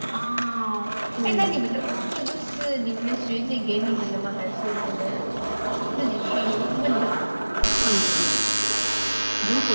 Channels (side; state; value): both; inverted; correlation -1.00